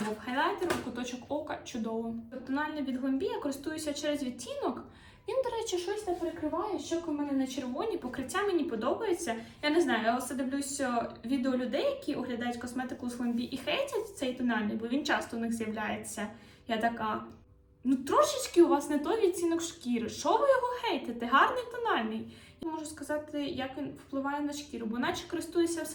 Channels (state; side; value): identical; both; correlation 1.00